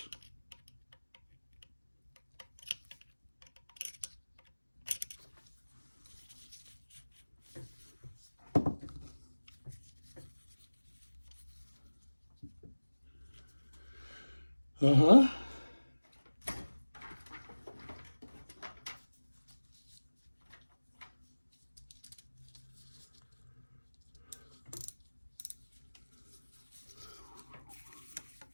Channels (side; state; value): both; inverted; correlation -1.00